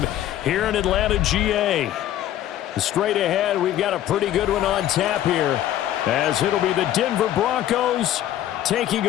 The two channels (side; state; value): right; quieter; 12.4 dB